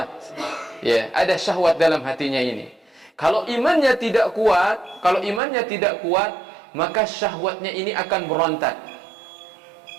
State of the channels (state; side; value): drops out; left; at 5.4 s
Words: ya, ada syahwat dalam hatinya ini. Kalau imannya tidak kuat, maka syahwatnya ini akan berontak.